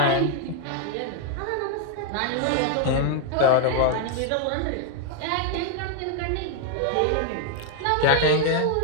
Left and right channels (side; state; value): both; different; correlation 0.00